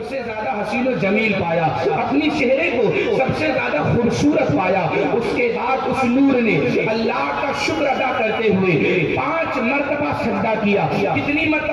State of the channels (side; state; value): both; identical; correlation 1.00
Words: سے زیادہ حسین و جمیل پایا، اپنی چہرے کو سب سے زیادہ خوبصورت پایا۔ اس کے بعد اس نور نے اللہ کا شکر ادا کرتے ہوئے 5 مرتبہ سجدہ کیا۔ کتنی